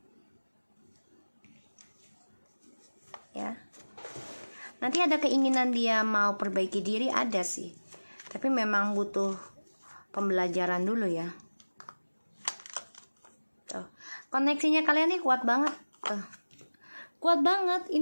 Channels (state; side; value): inverted; both; correlation -1.00